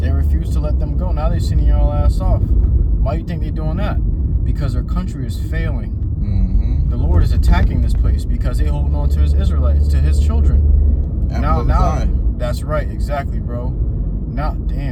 They refuse to let them go. Now they're sending y'all ass off. Why do you think they're doing that? Because their country is failing. The Lord is attacking this place because they're holding on to His Israelites, to His children. Now, that's right, exactly, bro. Now,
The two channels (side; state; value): both; identical; correlation 1.00